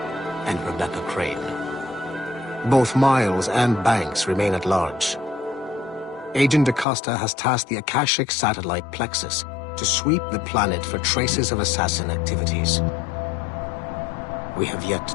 and Rebecca Crane. Both Miles and Banks remain at large. Agent Acosta has tasked the Akashic satellite Plexus to sweep the planet for traces of assassin activities. We have yet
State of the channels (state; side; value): drops out; right; at 6.9 s